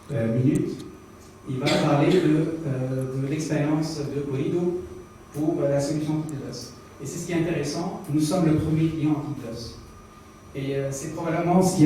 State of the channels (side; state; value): both; identical; correlation 1.00